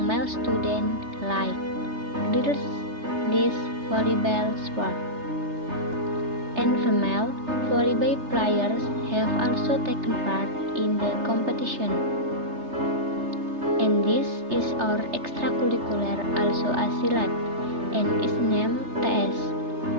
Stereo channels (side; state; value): left; late; 3.3 ms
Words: male students like girls this volleyball sport. And female volleyball players have also taken part in the competition. And this is our extracurricular also a silat and is named TS